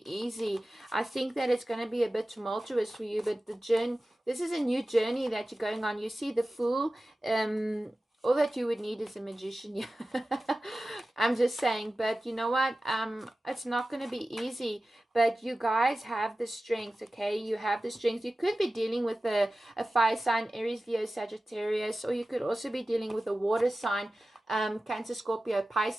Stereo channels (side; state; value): both; normal; correlation 0.95